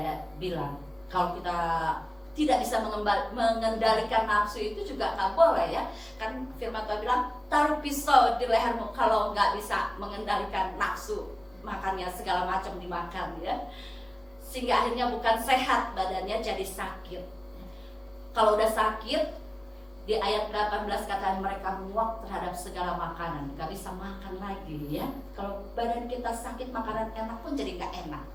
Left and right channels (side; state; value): left; noise; rumble, 30 dB below the sound